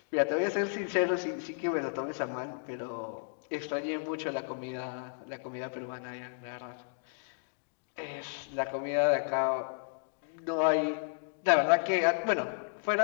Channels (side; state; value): right; silent; digital silence